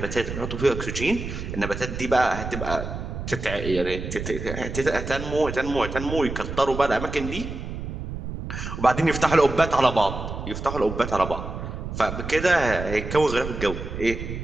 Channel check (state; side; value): noise; right; rumble, 7 dB below the sound